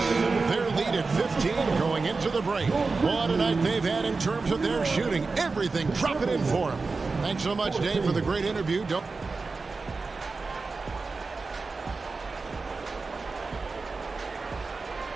Their lead at 15 going into the break. What a night they've had in terms of their shooting. Everything dropping in for them. Thanks so much, Dave, for the great interview.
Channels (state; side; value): quieter; left; 4.1 dB